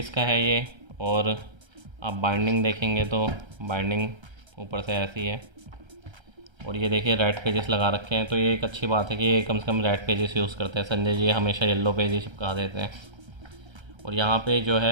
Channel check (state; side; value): late; left; 1.3 ms